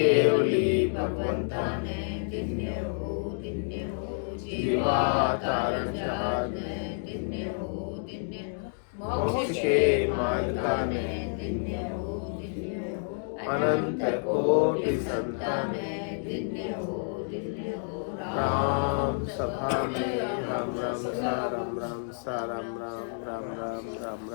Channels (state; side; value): silent; right; digital silence